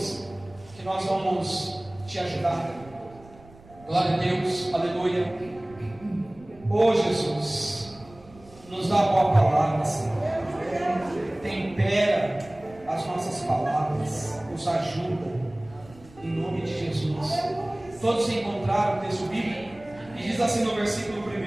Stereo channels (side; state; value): right; noise; rumble, 23 dB below the sound